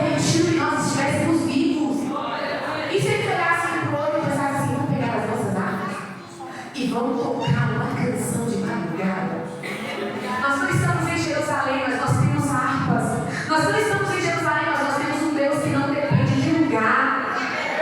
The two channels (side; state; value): both; identical; correlation 1.00